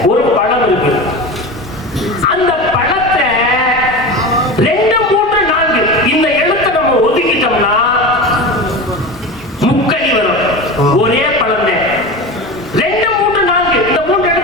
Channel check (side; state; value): both; normal; correlation 0.27